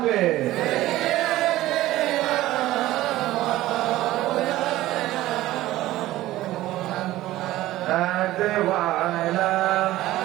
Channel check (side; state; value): left; quieter; 15.9 dB